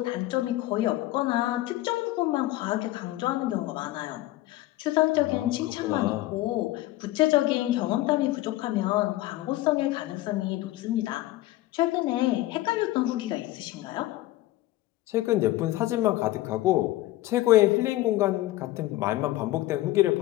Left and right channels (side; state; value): right; quieter; 16.6 dB